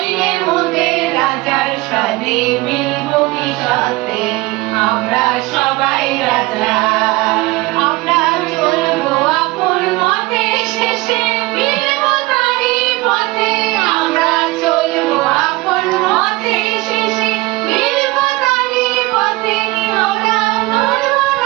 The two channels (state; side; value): quieter; left; 21.2 dB